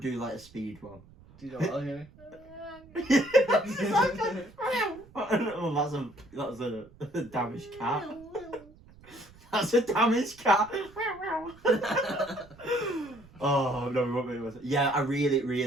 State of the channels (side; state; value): right; noise; rumble, 24 dB below the sound